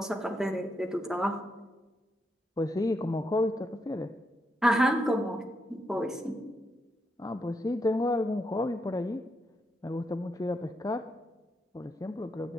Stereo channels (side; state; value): both; normal; correlation 0.81